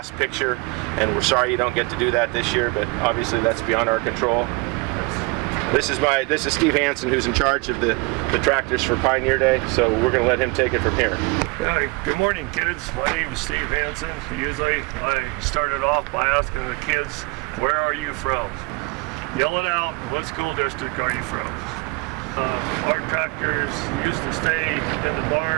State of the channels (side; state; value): left; quieter; 27.7 dB